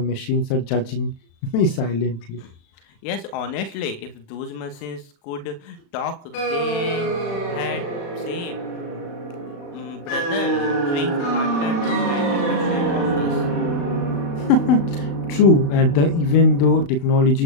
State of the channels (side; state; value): right; late; 36 ms